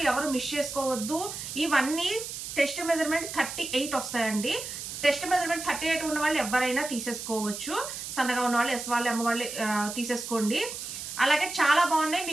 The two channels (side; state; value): right; noise; hiss, 8 dB below the sound